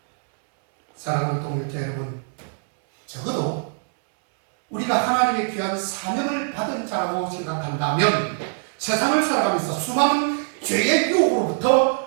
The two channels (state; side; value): silent; left; 64 dB below the other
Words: 사랑하는 동역자 여러분, 적어도 우리가 하나님의 귀한 사명을 받은 자라고 생각한다면 세상을 살아가면서 수많은 죄의